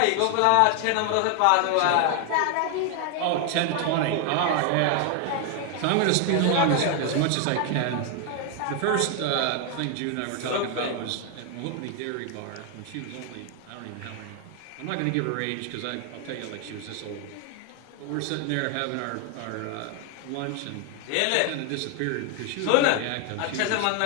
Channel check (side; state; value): both; different; correlation 0.00